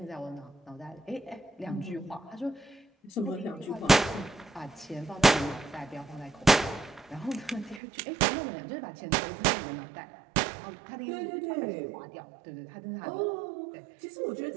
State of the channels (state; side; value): drops out; left; at 7.8 s